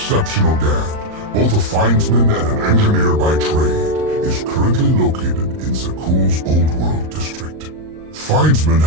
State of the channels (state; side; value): late; left; 38 ms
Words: Gand, both a findsman and an engineer by trade, is currently located in Zakuul's Old World district. Findsmen